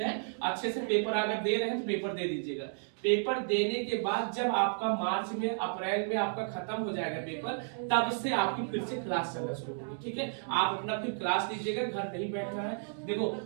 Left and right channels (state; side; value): silent; left; digital silence